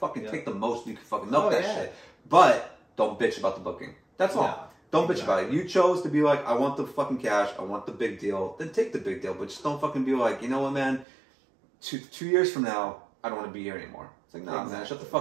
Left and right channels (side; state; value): left; drops out; at 11.1 s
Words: take the most you can fucking milk that shit. But don't bitch about the booking. That's all. Don't bitch about it. You chose to be like, I want the fucking cash, I want the big deal, then take the big deal. But just don't fucking be like, you know what, man, two years from now, I don't want to be here anymore. It's like, nah, man, shut the